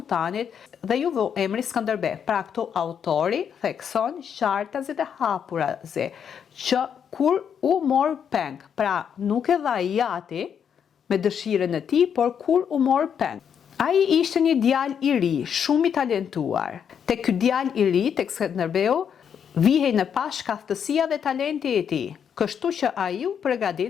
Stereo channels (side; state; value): right; quieter; 7.8 dB